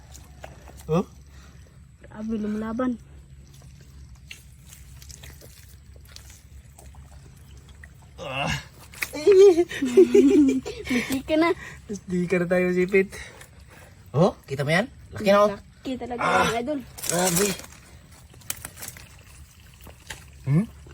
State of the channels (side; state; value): both; identical; correlation 1.00